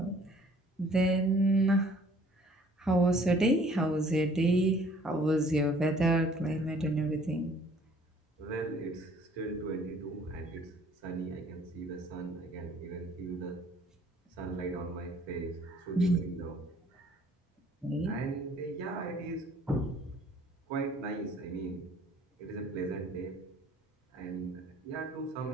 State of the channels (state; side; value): normal; both; correlation 0.56